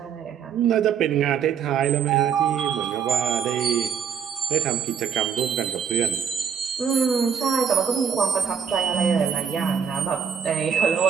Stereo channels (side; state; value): left; quieter; 7.4 dB